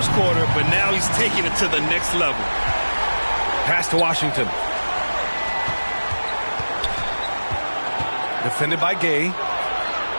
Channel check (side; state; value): both; inverted; correlation -1.00